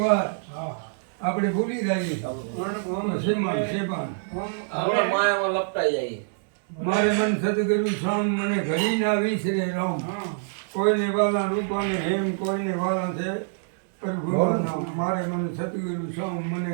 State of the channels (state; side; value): silent; left; digital silence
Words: આપણે ભૂલી જઈએ મારે મન સદગુરુ સ્વામ મને ઘડી ના વિસરે રામ કોઈને વાલા રૂપાને હેમ કોઈને વાલા છે પ્રભુ નામ મારે મન સદગુરુ સ્વામ